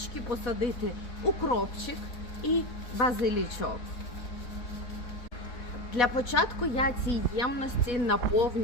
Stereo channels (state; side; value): late; right; 4.1 ms